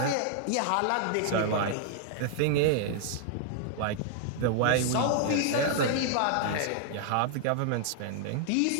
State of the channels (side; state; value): both; different; correlation 0.00